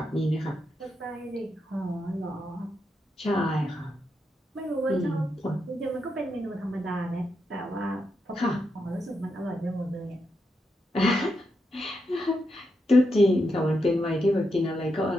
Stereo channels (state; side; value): normal; both; correlation 0.84